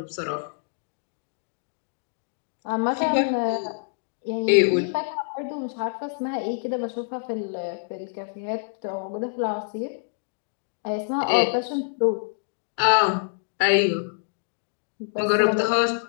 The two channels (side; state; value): right; silent; digital silence